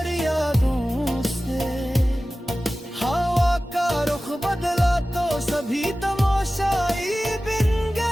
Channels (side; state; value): both; normal; correlation 0.96